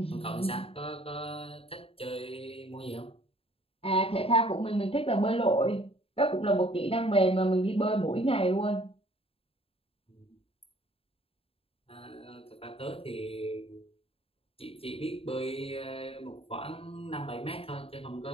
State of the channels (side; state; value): right; late; 0.27 ms